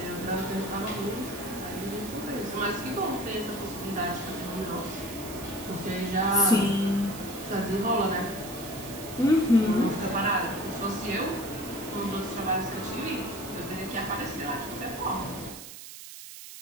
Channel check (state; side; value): noise; right; hiss, 13 dB below the sound